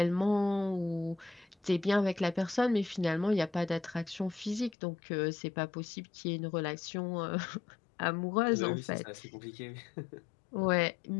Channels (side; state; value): right; drops out; at 4.8 s